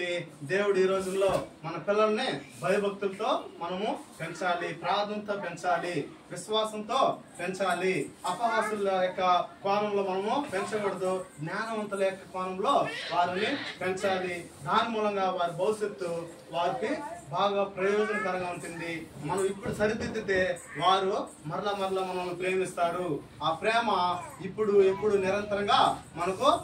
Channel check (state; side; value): identical; both; correlation 1.00